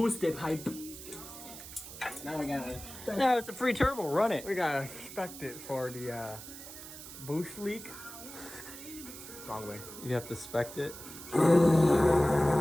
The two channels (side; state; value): right; noise; hiss, 13 dB below the sound